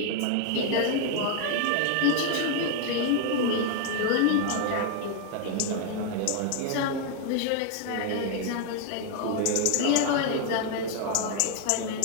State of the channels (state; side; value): different; both; correlation 0.00